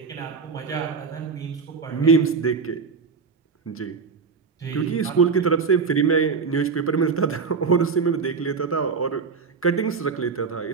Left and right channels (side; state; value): left; quieter; 5.2 dB